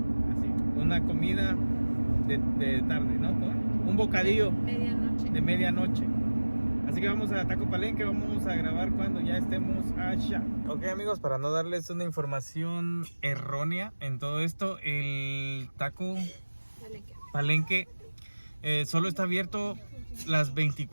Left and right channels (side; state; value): both; inverted; correlation -1.00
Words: Así, una comida de tarde, ¿no? Un bocadillo Medianoche. de medianoche. Así que vamos a Taco Palenque, vamos a grabar cuando ya estemos allá. Ok, amigos, para no darles una información errónea en todo esto, el Taco Palenque solo está abierto las